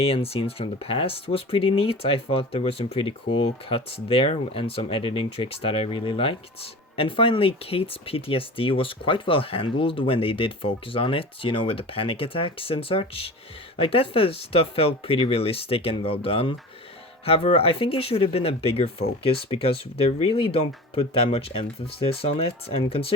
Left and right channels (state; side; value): normal; both; correlation 0.35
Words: and scenes from the past was pretty neat. I thought there were some pretty cool cuts there and some editing tricks that I really liked. And finally, Kate's PTSD was quite well handled when they did focus on it, you know, with the panic attacks and such. Like, that stuff felt pretty realistic and well done. However, I think it should have been a bigger focus because they really don't put that much emphasis on it, and